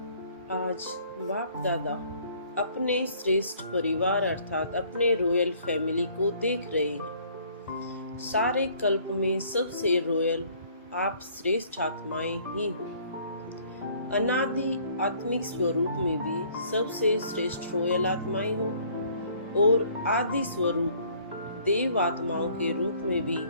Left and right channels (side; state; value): both; inverted; correlation -0.59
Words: आज बाप दादा अपने श्रेष्ठ परिवार अर्थात अपने रॉयल फैमिली को देख रहे हैं। सारे कल्प में सबसे रॉयल आप श्रेष्ठ आत्माएं ही हो। अनादि आत्मिक स्वरूप में भी सबसे श्रेष्ठ रॉयल आत्माएं हो और आदि स्वरूप देव आत्माओं के रूप में भी